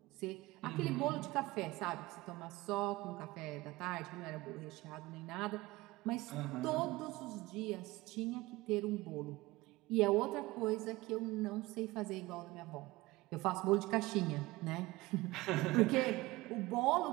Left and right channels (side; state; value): left; quieter; 20.2 dB